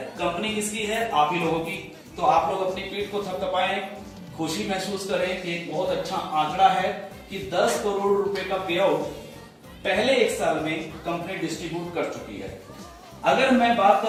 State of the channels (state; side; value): identical; both; correlation 1.00